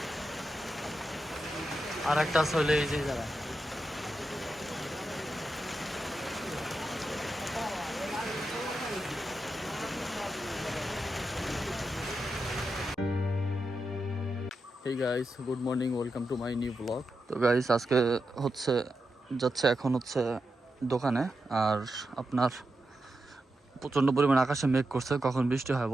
আর একটা আছে হলে এই যে জায়গা। Hey guys, good morning, welcome to my new vlog. তো গাইস আজকে হচ্ছে এখন হচ্ছে দোকানে। আর আপনার প্রচণ্ড পরিমাণ আকাশে মেঘ করছে, কখন বৃষ্টি হয়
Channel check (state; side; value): normal; both; correlation 0.88